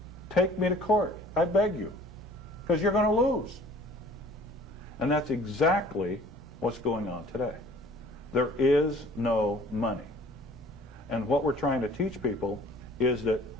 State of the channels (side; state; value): both; normal; correlation 0.51